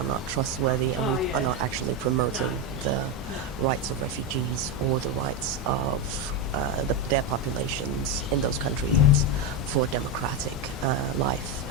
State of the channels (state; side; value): normal; both; correlation 0.10